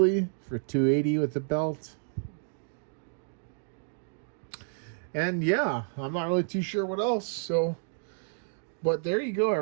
for 280 with the belt. And yeah, I'm not really too sure what else. So, but there you go,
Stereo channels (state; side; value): silent; left; digital silence